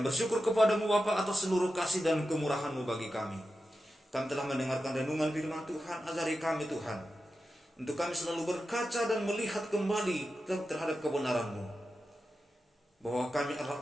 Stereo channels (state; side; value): normal; both; correlation 0.91